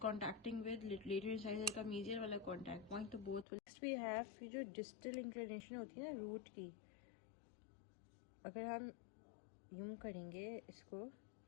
contacting with lateral incisor का मीजियल वाला कॉन्टैक्ट पॉइंट, तो both will. Next we have जो distal inclination होती है ना रूट की, अगर हम यूं करेंगे इसको,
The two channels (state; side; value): drops out; right; at 3.5 s